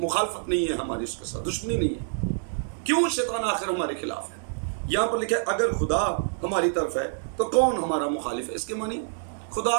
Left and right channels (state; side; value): silent; left; digital silence